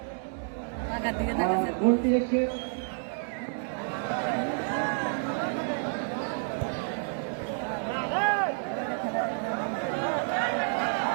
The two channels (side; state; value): left; silent; 58 dB below the other